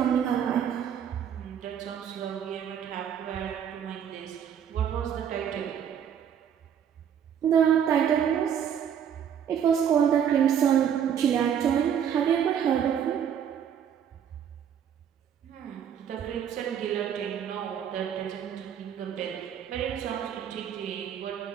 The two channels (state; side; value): quieter; left; 8.7 dB